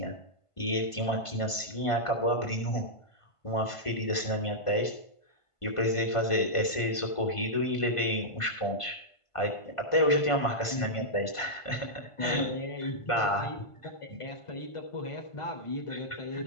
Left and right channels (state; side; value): late; right; 1.5 ms